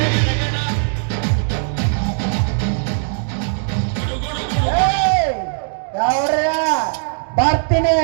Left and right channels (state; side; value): silent; left; digital silence